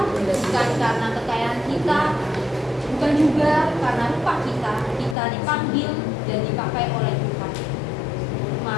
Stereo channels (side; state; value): right; drops out; at 5.2 s